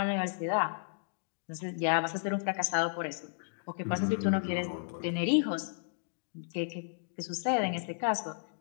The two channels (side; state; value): right; silent; digital silence